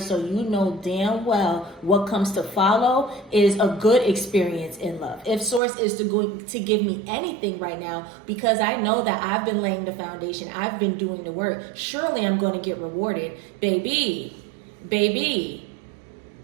you know damn well what comes to follow is a good experience in love. If Source is to give me anything right now, because I know that I've been laying the foundation, I've been doing the work, surely I'm going to get rewarded. Baby,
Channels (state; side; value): drops out; left; at 5.6 s